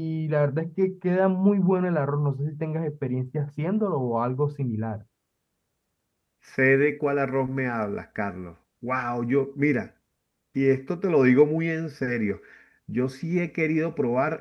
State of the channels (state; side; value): identical; both; correlation 1.00